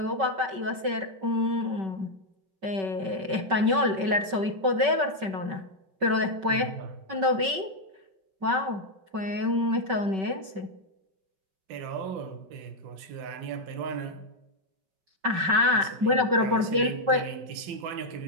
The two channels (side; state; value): left; late; 5.2 ms